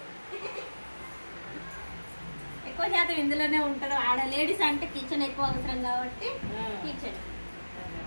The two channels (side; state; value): both; inverted; correlation -1.00